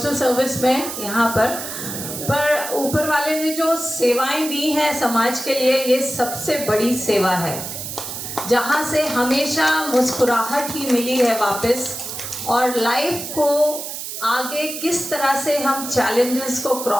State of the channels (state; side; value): noise; right; hiss, 7 dB below the sound